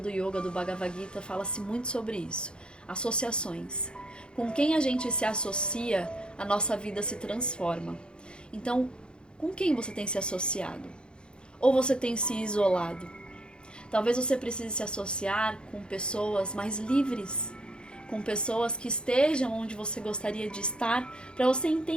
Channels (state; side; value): late; right; 0.051 ms